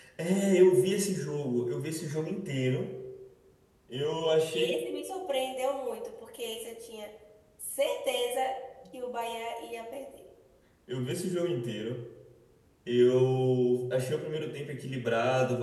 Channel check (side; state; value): both; identical; correlation 1.00